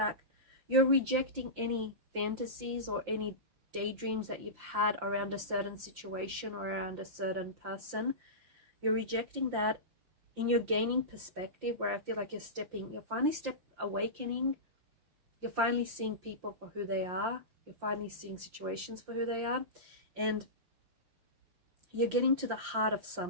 You're rejecting any fantasies or any daydreams that you've had around a certain situation or around a certain person. You're rejecting that, and you're gaining perspective, where I feel like you're finally awakening. You're finally seeing people for who they are. You're finally seeing situations for who they are. And you're getting to the heart of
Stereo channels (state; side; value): late; left; 5.7 ms